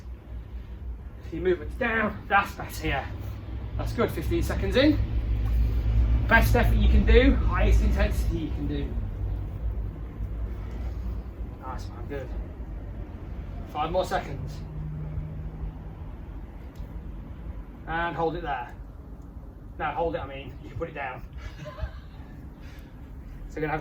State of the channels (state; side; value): identical; both; correlation 1.00